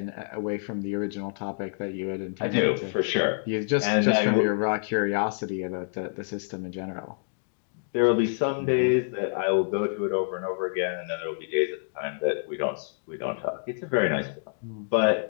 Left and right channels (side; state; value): right; silent; digital silence